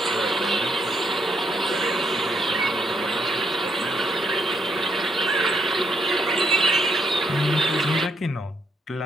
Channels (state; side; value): normal; both; correlation 0.74